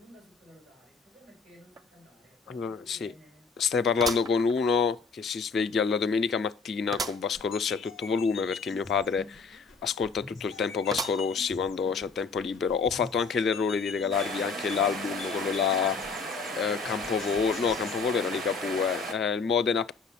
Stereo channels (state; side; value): quieter; right; 4.8 dB